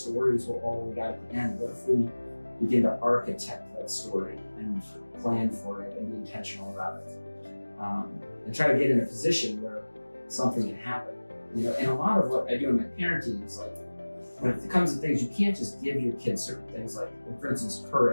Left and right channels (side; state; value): both; inverted; correlation -1.00